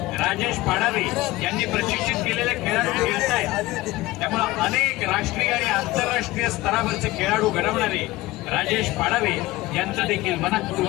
राजेश पाडावे यांनी प्रशिक्षित केलेले खेळाडू खेळत आहेत. त्यामुळे अनेक राष्ट्रीय आणि आंतरराष्ट्रीय स्तरावरचे खेळाडू घडवणारे राजेश पाडावे यांचं देखील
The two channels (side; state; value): right; quieter; 18.8 dB